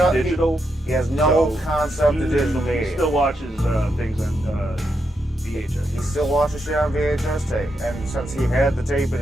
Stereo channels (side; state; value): both; normal; correlation 0.83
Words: Digital. He has no concept of digital media. He still watches things on VHS. He still watches shit on VHS tape, and since he had the tape in